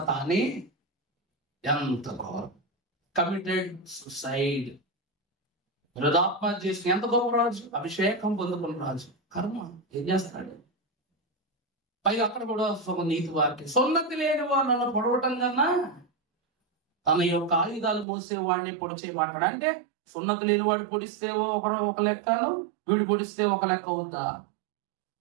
తానే ఎంత ఘోరం! Committed suicide. హృదాత్మహత్య చేసిన ఎంత గొప్ప రాజు, అభిషేకం పొందుకున్న రాజు. కర్మ ఏం చేస్తాడు? పైగా అక్కడ కూడా ఒక నీతి వాక్యం, సున్నతి లేని వాడు నన్ను పొడవటం కన్నా తన యొక్క ఆయుధాలు మోసేవాడిని పొడిచేయమంటాడు. అంటే సున్నతి లేని వాడు పొడిస్తే ఒక లెక్కను, వీడు పొడిస్తే ఒక లెక్క ఉందా?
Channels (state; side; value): drops out; left; at 18.1 s